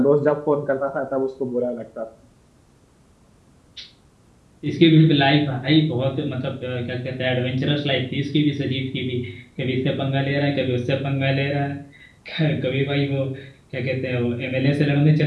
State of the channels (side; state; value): both; identical; correlation 1.00